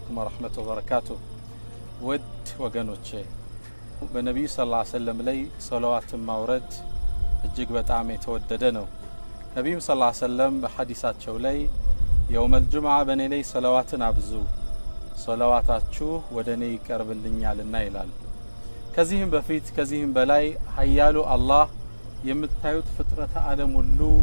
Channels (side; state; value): both; inverted; correlation -1.00